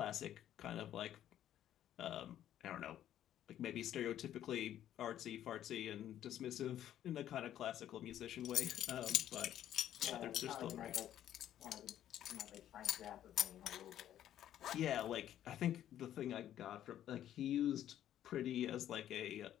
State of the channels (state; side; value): quieter; right; 11.5 dB